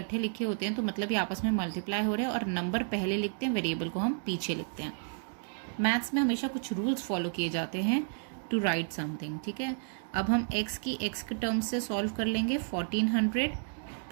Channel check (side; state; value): left; silent; digital silence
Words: लिखे होते हैं तो मतलब ये आपस में मल्टीप्लाई हो रहे हैं और नंबर पहले लिखते हैं, वेरिएबल को हम पीछे लिखते हैं। मैथ्स में हमेशा कुछ रूल्स फॉलो किए जाते हैं टू राइट समथिंग, ठीक है। अब हम x के टर्म्स से सॉल्व कर लेंगे। 1400